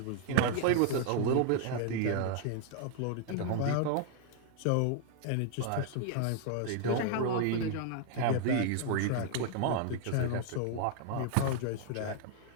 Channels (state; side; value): different; both; correlation 0.00